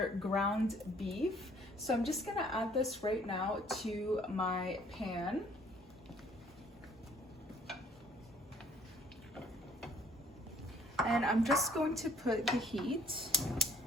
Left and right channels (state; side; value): normal; both; correlation 0.58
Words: ground beef. So I'm just gonna add this right now to my pan. And I'm just going to put the heat